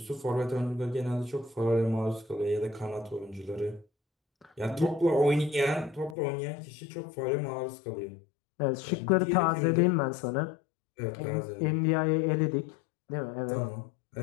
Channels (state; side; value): drops out; right; at 6.2 s